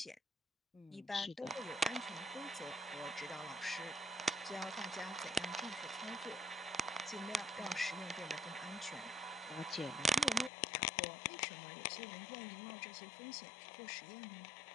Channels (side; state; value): right; drops out; at 10.5 s